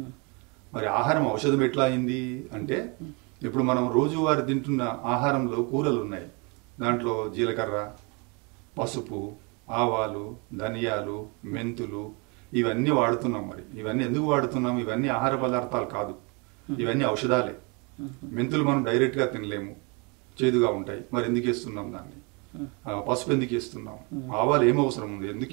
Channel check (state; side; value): quieter; left; 31.3 dB